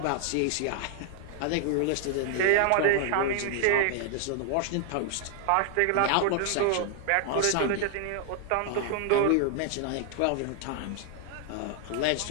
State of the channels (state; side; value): different; both; correlation 0.00